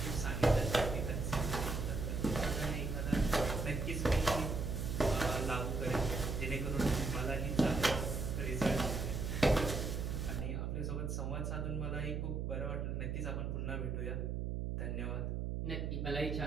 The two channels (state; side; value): noise; right; hum, 2 dB below the sound